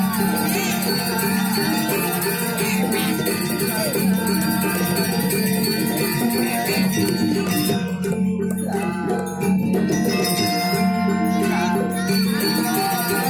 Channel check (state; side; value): identical; both; correlation 1.00